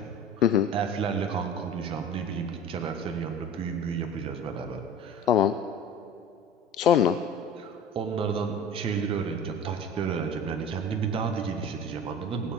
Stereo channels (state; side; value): normal; both; correlation 0.38